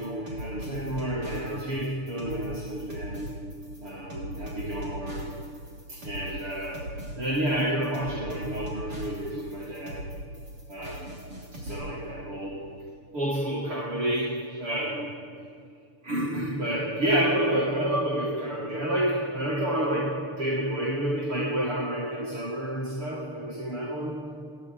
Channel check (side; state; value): left; late; 6.8 ms